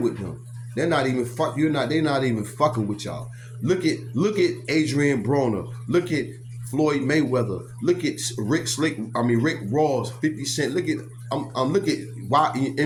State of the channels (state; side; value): identical; both; correlation 1.00